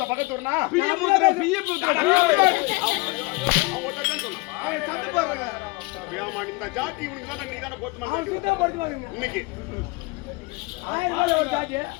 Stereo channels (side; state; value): right; quieter; 25.4 dB